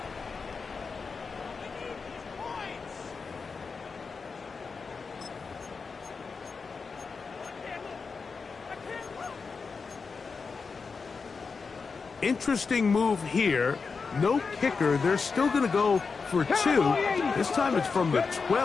Interesting move here. No kicker. They're still going to go for 2. This time it's from the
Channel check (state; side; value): quieter; right; 4.9 dB